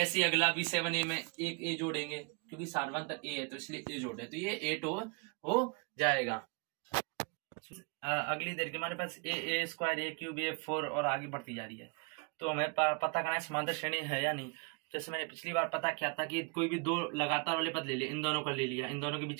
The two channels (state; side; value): quieter; left; 33.4 dB